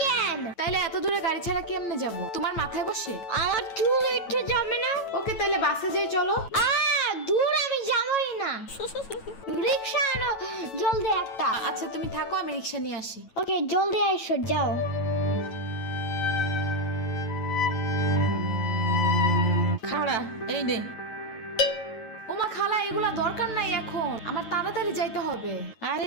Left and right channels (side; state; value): right; late; 9.0 ms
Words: কেন? তাইলে এত দূরে গাড়ি ছাড়া কেমনে যাব? তোমার মাথায় বসে? আমার চুল উঠে যাবে না? ওকে, তাইলে বাসে যাই চলো। দূর, আমি যাবই না। রিক্সা আনো জলদি একটা। আচ্ছা তুমি থাকো, আমি রিক্সা নিয়ে আসি। ওকে, জলদি আইসো, যাও। খাড়া, এই নে। ওমা খালা, এগুলা দরকার নাই এখন, আমার তাড়াতাড়ি যাইতে হবে। আরে